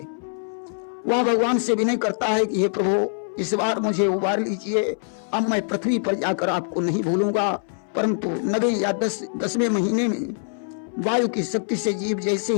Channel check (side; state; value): right; silent; 63 dB below the other